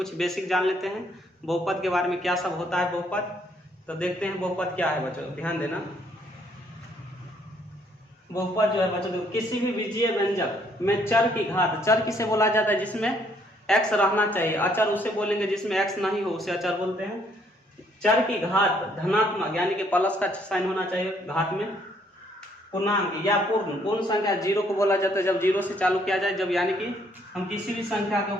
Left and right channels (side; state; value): both; normal; correlation 0.67